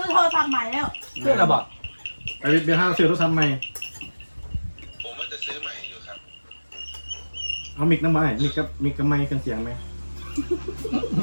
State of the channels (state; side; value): inverted; both; correlation -1.00